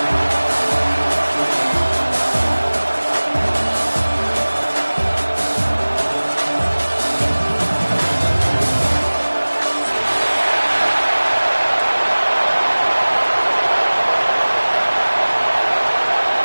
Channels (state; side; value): inverted; both; correlation -1.00